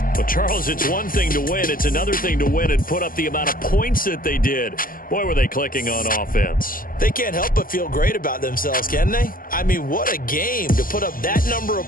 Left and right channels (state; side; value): late; right; 0.41 ms